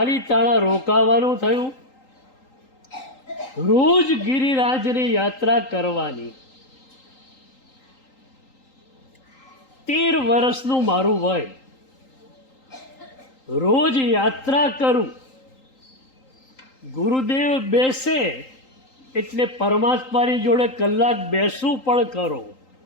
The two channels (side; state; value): right; late; 3.8 ms